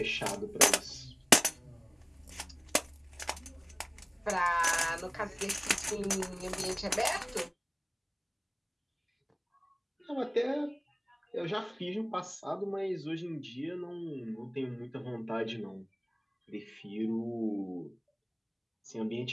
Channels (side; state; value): both; identical; correlation 1.00